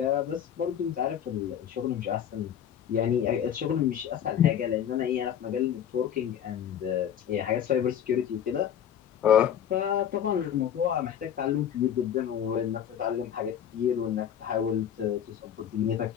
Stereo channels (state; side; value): quieter; right; 9.3 dB